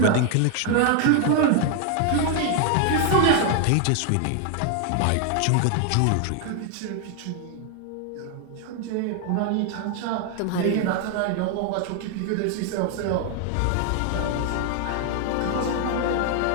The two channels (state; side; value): different; both; correlation 0.00